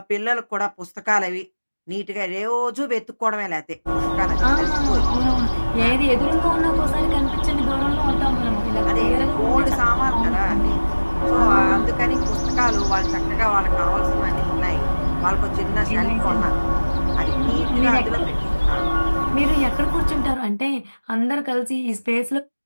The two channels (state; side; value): inverted; both; correlation -1.00